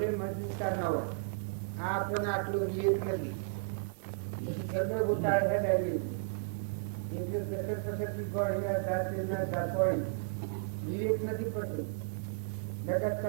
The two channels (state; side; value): silent; left; digital silence